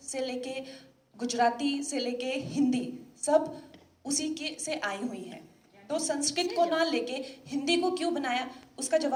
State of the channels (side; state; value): both; identical; correlation 1.00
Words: से लेके गुजराती से लेके हिंदी सब उसी के से आई हुई हैं. तो संस्कृत को ना लेके हिंदी को क्यों बनाया, उसका